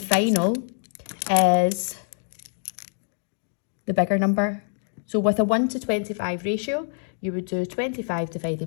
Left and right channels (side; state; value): right; silent; digital silence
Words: is the bigger number. So with a 1 to 25 ratio, you would do 25